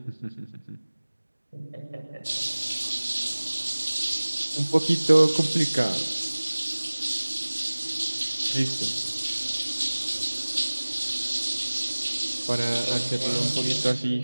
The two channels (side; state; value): both; inverted; correlation -1.00